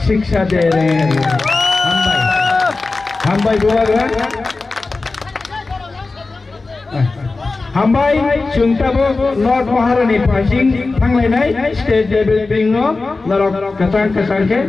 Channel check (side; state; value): right; quieter; 3.6 dB